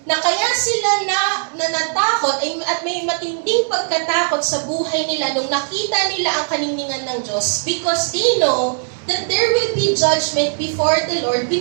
na kaya sila natakot at may matinding pagkatakot sa buhay nila nung nakita nila ang kaninningan ng Diyos, because they know that there will be judgment before the Lord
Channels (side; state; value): left; silent; 67 dB below the other